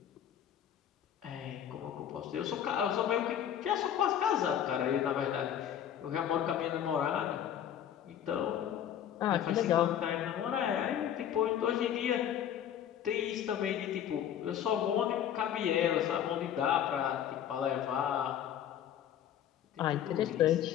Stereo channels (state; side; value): quieter; right; 10.0 dB